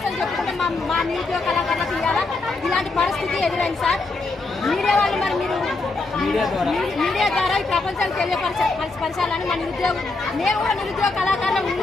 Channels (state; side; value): quieter; right; 3.5 dB